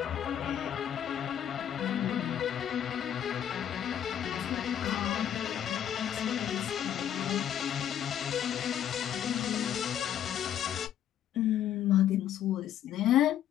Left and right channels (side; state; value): right; quieter; 10.2 dB